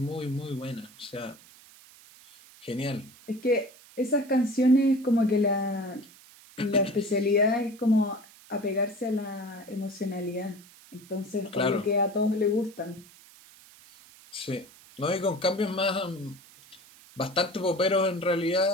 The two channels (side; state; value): right; noise; hiss, 23 dB below the sound